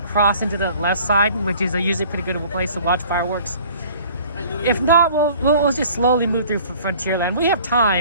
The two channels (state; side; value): inverted; both; correlation -0.50